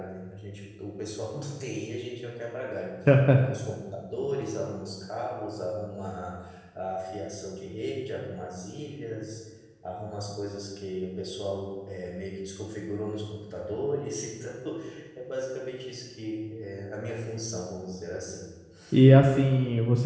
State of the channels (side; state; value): both; identical; correlation 1.00